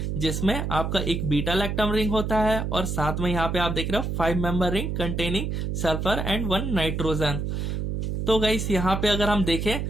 जिसमें आपका एक बीटा लैक्टम रिंग होता है और साथ में यहाँ पे आप देख रहे हो 5 member ring containing sulphur and 1 nitrogen. तो गाइस यहाँ पे अगर हम देखें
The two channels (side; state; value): right; noise; hum, 2 dB below the sound